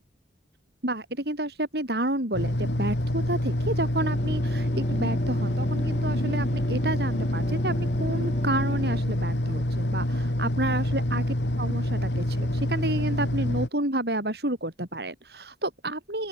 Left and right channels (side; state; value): both; normal; correlation 0.56